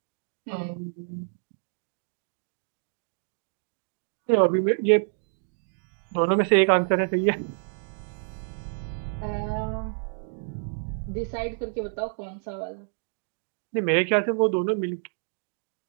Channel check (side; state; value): left; silent; digital silence